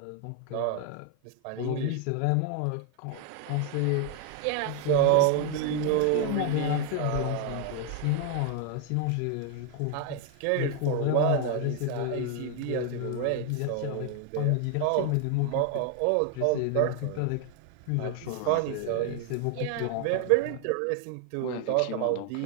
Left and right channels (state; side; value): different; both; correlation 0.01